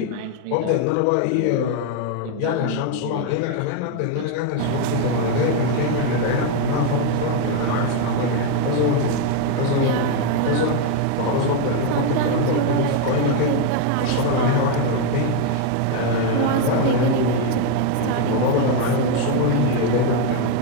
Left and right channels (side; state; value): both; different; correlation 0.01